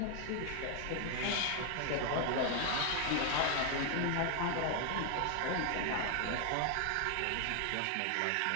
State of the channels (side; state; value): both; different; correlation 0.00